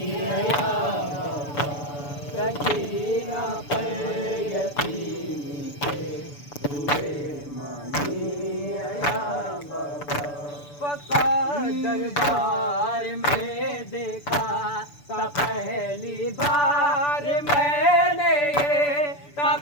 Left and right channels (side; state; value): right; late; 6.9 ms